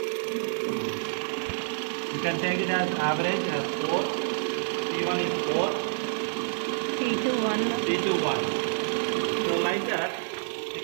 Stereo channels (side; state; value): left; silent; digital silence